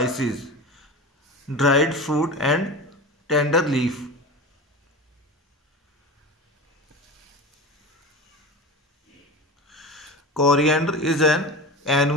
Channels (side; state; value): both; normal; correlation 0.30